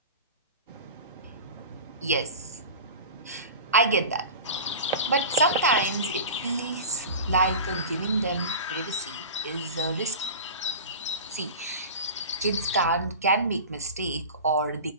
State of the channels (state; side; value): inverted; both; correlation -0.33